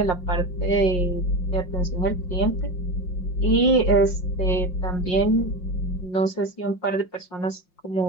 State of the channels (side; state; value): right; late; 5.6 ms